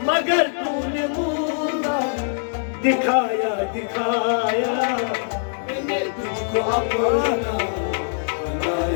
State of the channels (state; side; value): silent; right; digital silence